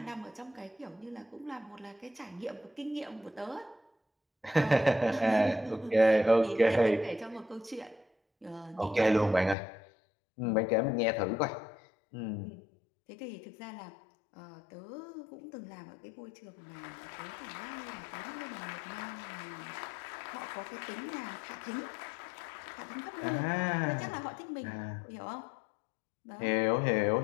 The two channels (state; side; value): drops out; right; at 9.6 s